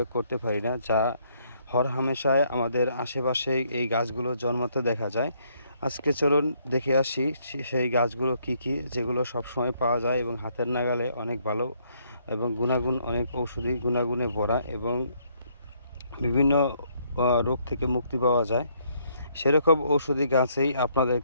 করতে পারি না। যা হরহামেশায় আমাদের আশেপাশে এই গাছগুলো জন্মাতে দেখা যায়। আজকে চলুন দেখে আসি সেই গাছগুলো কি কি, যেগুলো সবসময় পাওয়া যায় এবং হাতের নাগালে অনেক ভালো এবং গুণাগুণ অনেক ঔষধি গুণাগুণে ভরা এবং বিভিন্ন রোগ থেকে মুক্তি পাওয়া যায়। সেরকম ঔষধি গাছেই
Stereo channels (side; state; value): both; inverted; correlation -0.70